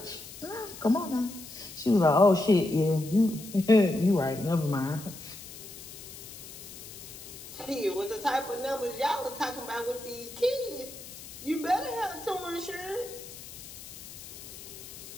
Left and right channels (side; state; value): left; noise; hiss, 14 dB below the sound